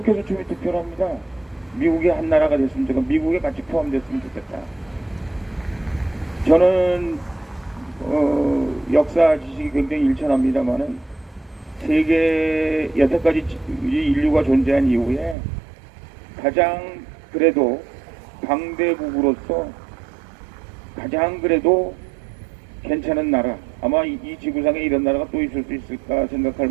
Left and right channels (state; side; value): drops out; left; at 15.4 s